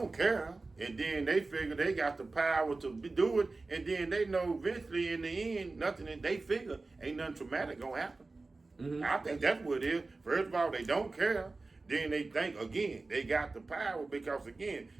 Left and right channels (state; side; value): quieter; left; 3.5 dB